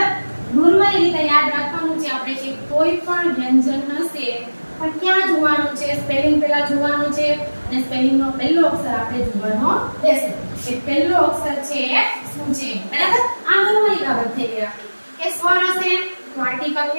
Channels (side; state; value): both; inverted; correlation -1.00